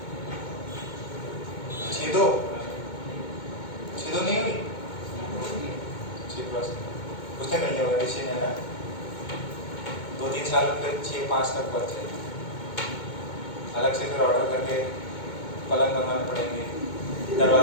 6-2 नहीं हुई, 6+ उसने कर लिया होगा, ऋषि ने ना 2-3 साल फिर 6-5 तक बढ़ जाएगी। अलग से फिर ऑर्डर करके पलंग बनवाने पड़ेंगे,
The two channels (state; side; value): late; right; 2.2 ms